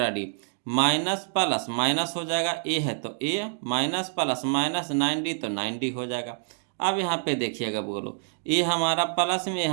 माइनस प्लस माइनस हो जाएगा, ए है तो A minus plus minus 9D तो 9D हो जाएगा। अब यहाँ पे देखिएगा बोलो, ए हमारा प्लस में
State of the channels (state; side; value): silent; left; digital silence